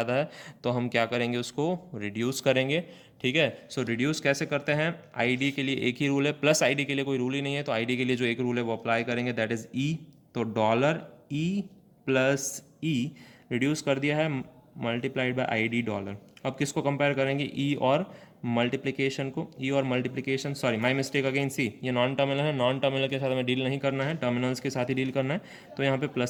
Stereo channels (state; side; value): identical; both; correlation 1.00